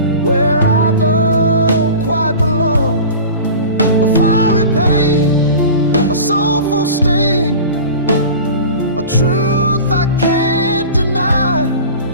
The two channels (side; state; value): both; inverted; correlation -0.36